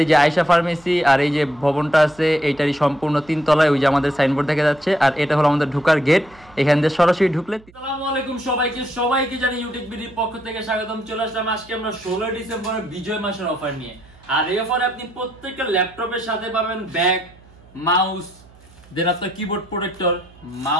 এই যে আয়শা ফার্মেসি আর এই যে ভবনটা আছে এইটারই সম্পূর্ণ 3 তলায় ওই যে আমাদের সাইনবোর্ড দেখা যাচ্ছে। আর এটা হলো আমাদের ঢোকার গেট, এখান দিয়ে সরাসরি ঢুকলে। আসসালামু আলাইকুম সবাইকে জানি ইউটিউববিডির পক্ষ থেকে স্বাগতম। চলে আসলাম আজকে আমরা 16 ডিসেম্বরের বিজয় মাসের অফার নিয়ে। আর এই অফারে আপনি প্রত্যেকটা ল্যাপটপের সাথে পাবেন ব্যাগ, মাউস, দেন আপনার কিবোর্ড প্রোটেক্টর,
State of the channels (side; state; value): right; noise; hum, 25 dB below the sound